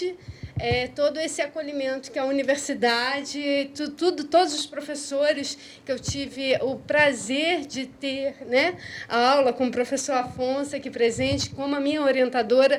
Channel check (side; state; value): both; identical; correlation 1.00